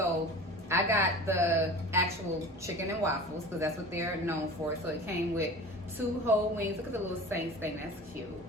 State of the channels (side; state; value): both; normal; correlation 0.37